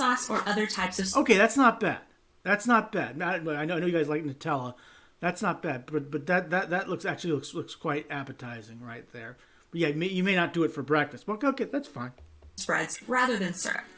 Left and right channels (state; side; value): identical; both; correlation 1.00